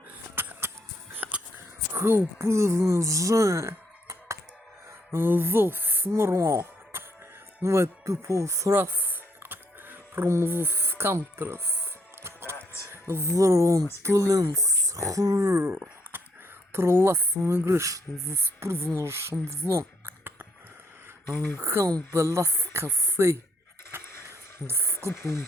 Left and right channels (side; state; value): both; normal; correlation 0.72